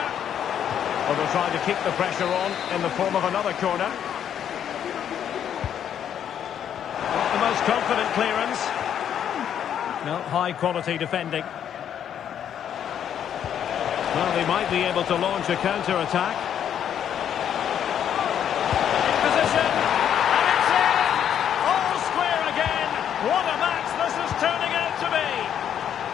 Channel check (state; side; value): quieter; right; 9.3 dB